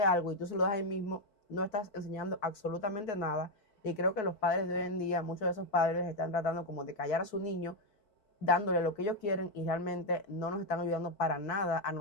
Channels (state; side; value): late; right; 4.6 ms